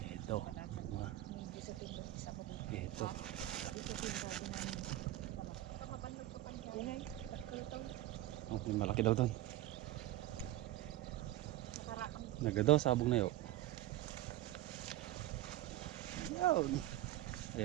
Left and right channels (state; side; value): quieter; left; 15.2 dB